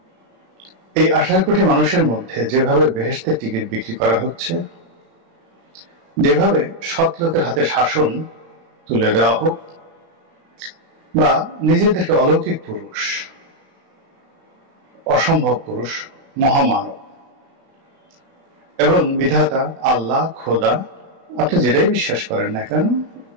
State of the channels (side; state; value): left; late; 36 ms